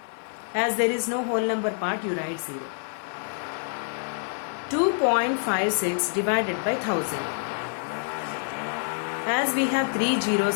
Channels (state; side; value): silent; right; 60 dB below the other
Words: As there is no whole number part, you write 0. 2.56 divided by 1000. As we have 3